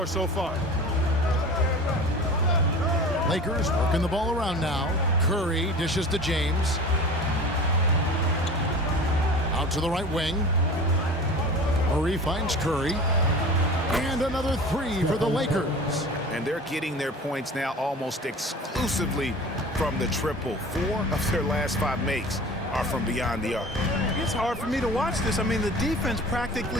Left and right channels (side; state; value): both; normal; correlation 0.38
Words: so far. Lakers working the ball around now. Curry dishes to James. Out to the right wing. Murray finds Curry. And another 3 for the Lakers. And they're getting their points now almost exclusively from the triple. 4 of their last 5 makes are from beyond the arc. It's hard for me to watch this. I mean, the defense